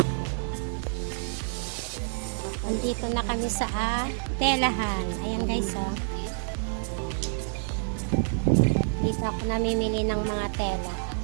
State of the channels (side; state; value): left; silent; 59 dB below the other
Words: Nandito na kami sa telahan. Ayan guys, oh. Dito ako namimili ng mga tela.